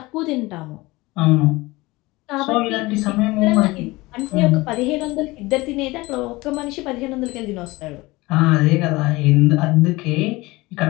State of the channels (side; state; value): right; quieter; 21.4 dB